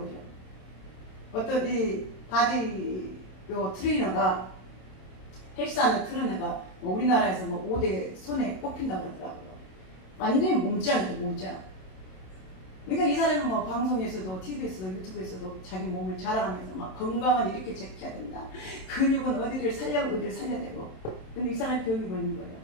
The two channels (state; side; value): late; right; 27 ms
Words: 어떤 이 바디 트레이너가 헬스하는 트레이너가 뭐 우리나라에서 뭐 5대 손에 꼽힌다고 그러더라고요. 완전히 몸짱이죠, 몸짱. 그러니까 이 사람은 뭐 방송에서도 TV에서도 유튜브에서도 자기 몸을 자랑하면서 막 건강은 이렇게 지켜야 된다. 근육은 어디를 살려내고. 근데 이 사람이 병이 걸린 거예요.